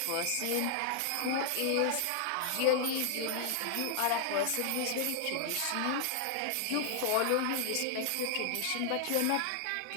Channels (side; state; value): both; different; correlation 0.00